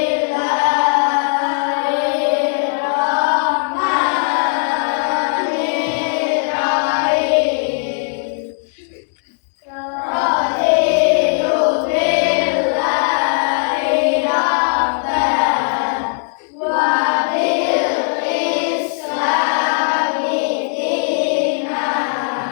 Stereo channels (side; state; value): right; silent; 65 dB below the other